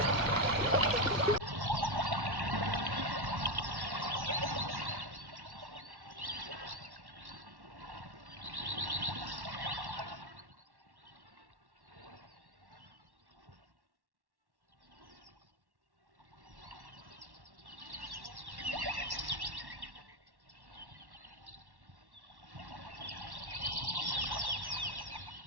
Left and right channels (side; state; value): left; late; 1.1 ms